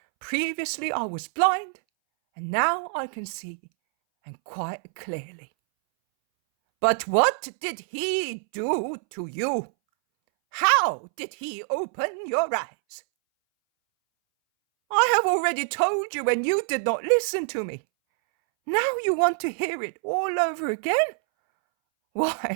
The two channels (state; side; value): silent; left; 61 dB below the other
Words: previously I was blind, and now I can see, and quite clearly." "But what did he do to you? How did he open your eyes?" "I have already told you, and you did not listen to me. Now you want to hear it all over again?